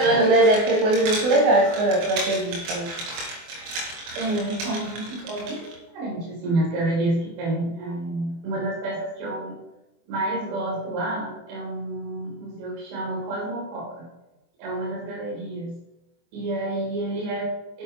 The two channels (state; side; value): late; left; 24 ms